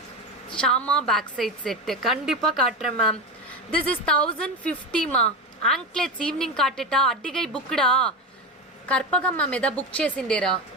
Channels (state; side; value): normal; both; correlation 0.20